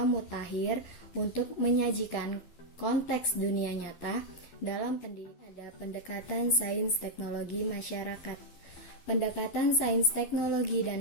mutakhir untuk menyajikan konteks dunia nyata dalam pendidikan. Ada pendekatan sains teknologi masyarakat. Pendekatan sains teknologi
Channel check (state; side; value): late; right; 12 ms